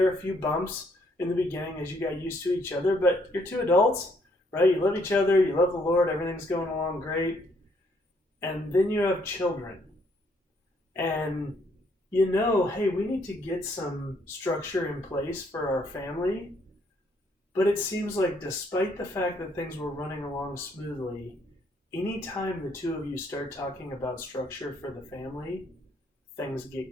were a few bumps in the beginning as you got used to each other, but you're two adults, right? You love each other, you love the Lord, everything's going along great. And then you have children. And you know, hey, we need to get some structure in place for our family. But it seems like despite the fact that things were running along smoothly, anytime the two of you start talking about structure for the family, things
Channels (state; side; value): normal; both; correlation 0.69